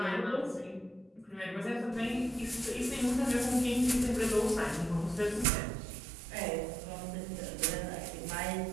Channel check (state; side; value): drops out; left; at 5.5 s